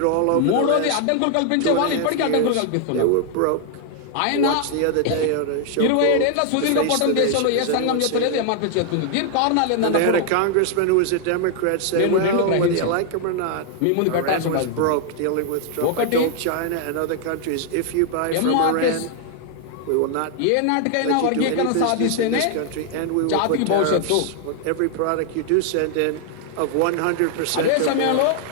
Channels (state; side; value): different; both; correlation 0.00